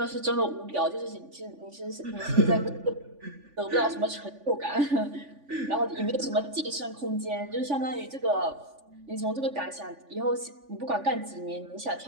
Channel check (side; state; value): left; late; 3.5 ms